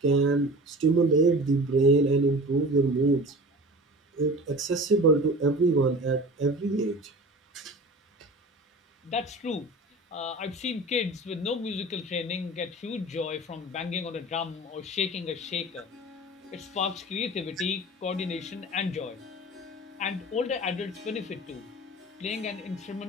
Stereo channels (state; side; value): normal; both; correlation 0.37